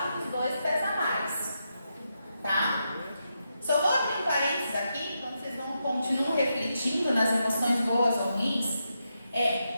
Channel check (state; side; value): inverted; both; correlation -0.85